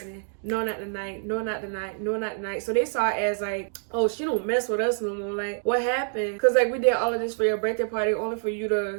No, not tonight. No, not tonight. No, not tonight. So they saw it as like, oh, she don't mess with us no more. Like, what happened? Because like, we did all of this for your birthday party only for you to,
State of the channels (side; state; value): left; silent; digital silence